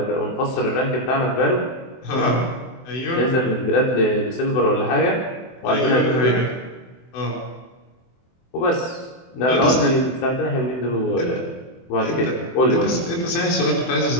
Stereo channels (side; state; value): right; late; 24 ms